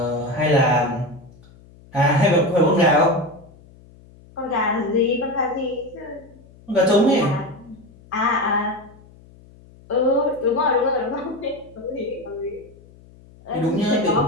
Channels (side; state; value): left; noise; hum, 24 dB below the sound